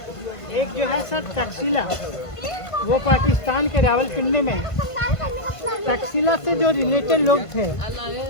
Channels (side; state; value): right; late; 1.5 ms